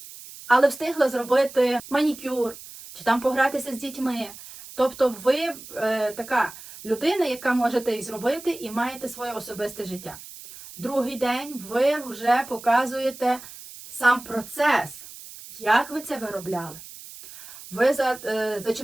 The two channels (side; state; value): right; noise; hiss, 16 dB below the sound